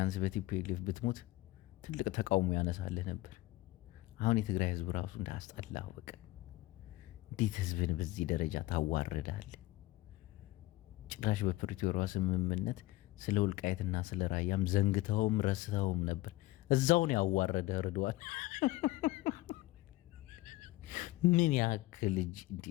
በቲፒኤልኤፍ ብትሞት ትልቅ ተቃውሞ ያነሳልህ ነበር። አሁን የትግራይ ህዝብ ራሱ እንዳስጠላህ በቃ። እንዴት ህዝብን በዚህ ደረጃ ታዋርዳለህ? ጭራሽ በፕሪቶሪያ ስምምነት ስለ ወልቃይትና ስለ ራያም ዘንግተውም ረስተውም ነበር። እዛውን ያዋረደ ርዷል። ምን ያክል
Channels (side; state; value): right; quieter; 18.3 dB